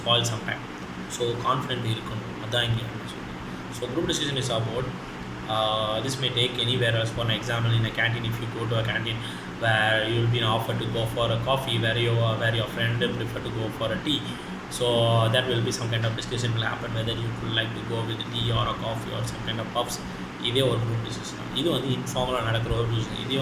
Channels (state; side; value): identical; both; correlation 1.00